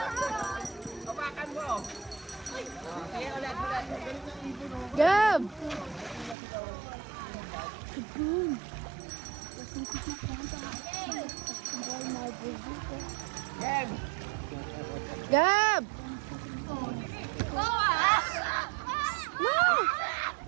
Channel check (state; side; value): drops out; left; at 6.4 s